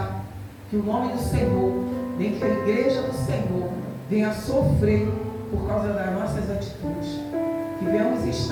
que o nome do Senhor, nem que a igreja do Senhor venha sofrer por causa das nossas atitudes. Que venhamos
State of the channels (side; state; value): both; identical; correlation 1.00